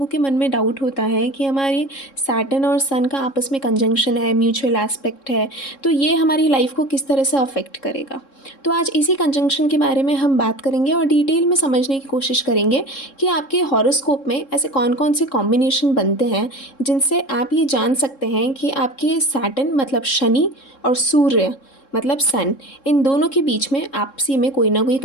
के मन में डाउट होता है कि हमारे सैटर्न और सन का आपस में कंजंक्शन है, म्यूचुअल एस्पेक्ट है, तो ये हमारी लाइफ को किस तरह से अफेक्ट करेगा। तो आज इसी कंजंक्शन के बारे में हम बात करेंगे और डिटेल में समझने की कोशिश करेंगे कि आपके हॉरोस्कोप में ऐसे कौन कौन से कॉम्बिनेशन बनते हैं जिनसे आप ये जान सकते हैं कि आपके सैटर्न मतलब शनि और सूर्य मतलब सन, इन दोनों के बीच में आपसी में कोई ना कोई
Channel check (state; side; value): late; right; 3.7 ms